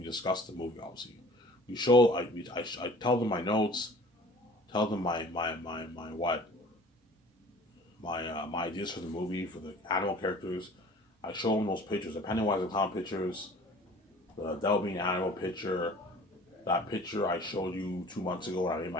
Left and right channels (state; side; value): normal; both; correlation 0.48